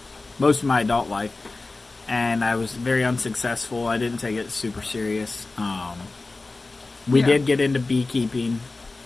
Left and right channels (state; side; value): quieter; right; 3.4 dB